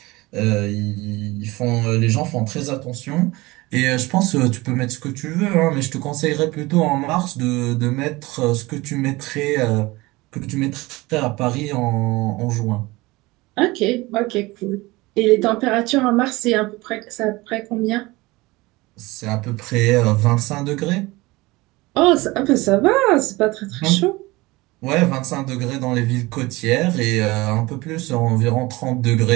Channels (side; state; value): left; quieter; 21.5 dB